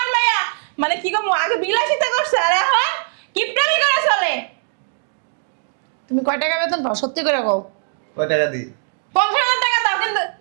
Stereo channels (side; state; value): left; silent; digital silence